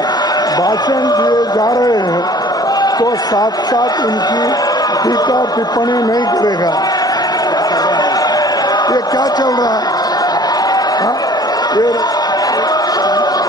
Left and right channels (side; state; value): both; normal; correlation 0.50